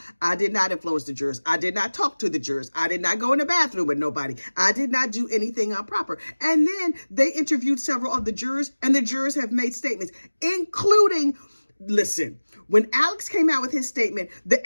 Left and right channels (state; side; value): inverted; both; correlation -1.00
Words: I did not influence the jurors. I did not talk to the jurors. I did not go in the bathroom with nobody. I did not do anything improper. And then they interviewed several of the jurors, and the jurors have made statements, including, listen, when Alex came out with his statement, the